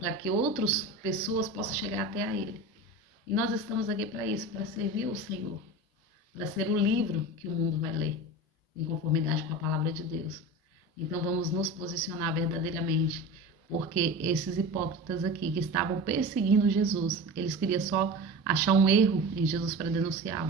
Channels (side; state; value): both; normal; correlation 0.31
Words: que outras pessoas possam chegar até a Ele. E nós estamos aqui para isso, para servir o Senhor, para ser o livro que o mundo vai ler, em conformidade com a palavra de Deus. Então vamos nos posicionar verdadeiramente, porque esses hipócritas aqui que estavam perseguindo Jesus, eles queriam só achar um erro em Jesus para